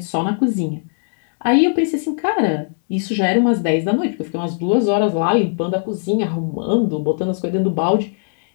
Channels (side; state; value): right; silent; digital silence